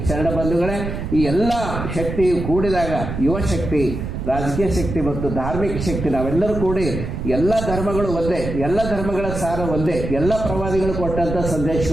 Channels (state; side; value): noise; right; rumble, 5 dB below the sound